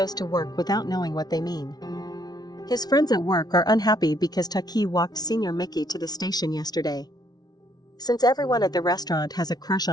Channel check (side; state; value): right; late; 0.19 ms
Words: to work without knowing what they mean. His friends at work are unhappy because Taki walked Senior Miki to the station yesterday. Since everyone at the restaurant has a crush